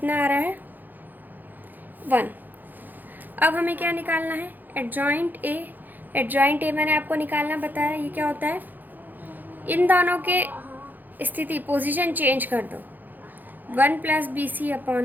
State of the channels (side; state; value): left; late; 0.086 ms